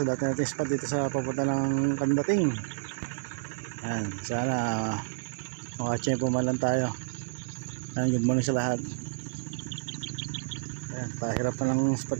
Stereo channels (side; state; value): left; quieter; 34.5 dB